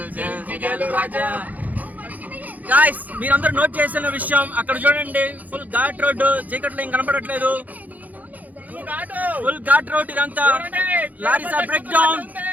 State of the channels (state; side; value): late; left; 0.079 ms